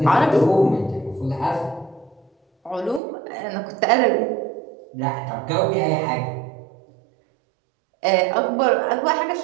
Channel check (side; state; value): left; drops out; at 3.0 s